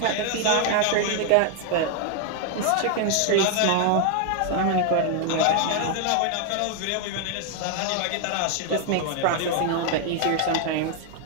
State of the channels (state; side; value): different; both; correlation 0.00